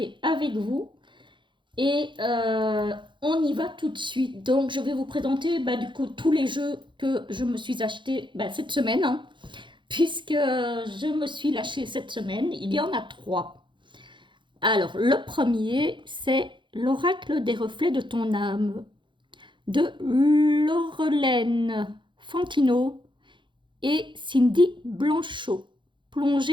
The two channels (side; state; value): left; late; 0.23 ms